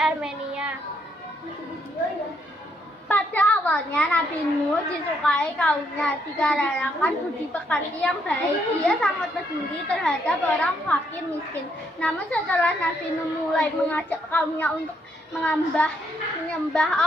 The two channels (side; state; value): both; normal; correlation 0.74